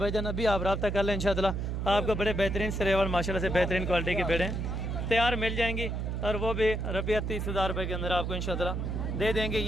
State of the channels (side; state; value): right; noise; hum, 2 dB below the sound